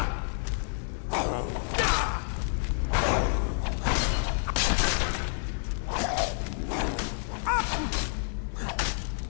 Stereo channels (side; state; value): right; silent; digital silence